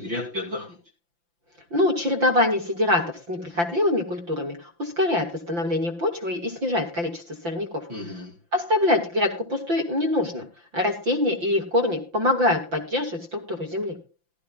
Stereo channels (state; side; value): late; left; 5.8 ms